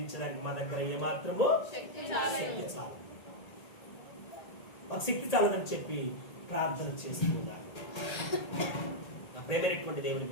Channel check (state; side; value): late; right; 1.8 ms